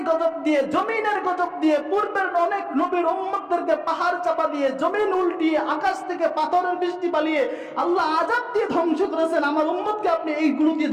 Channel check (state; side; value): identical; both; correlation 1.00